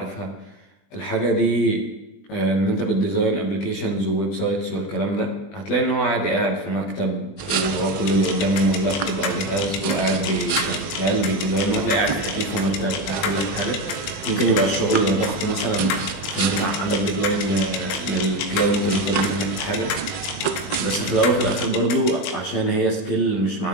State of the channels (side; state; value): right; late; 21 ms